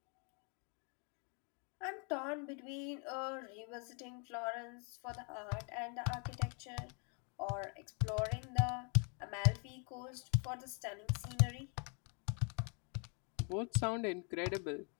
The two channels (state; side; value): quieter; right; 36.9 dB